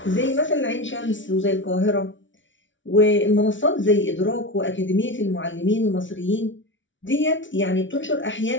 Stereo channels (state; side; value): late; right; 0.56 ms